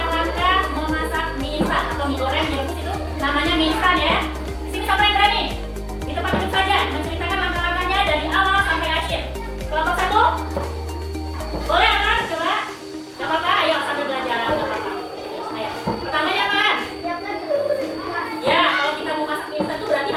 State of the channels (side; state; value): both; identical; correlation 1.00